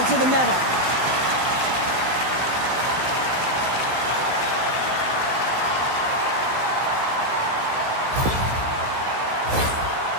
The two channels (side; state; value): left; late; 16 ms